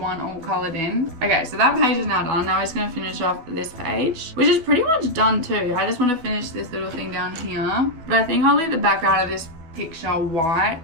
all colored in. Okay, so that page is now done. Now we're just gonna finish off this page, which is pretty much done too. I just want to finish this little thing down here. But I think I'll leave the background of this picture white,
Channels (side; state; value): left; late; 12 ms